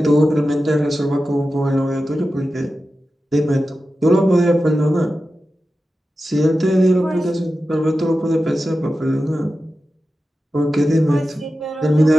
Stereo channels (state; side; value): normal; both; correlation 0.93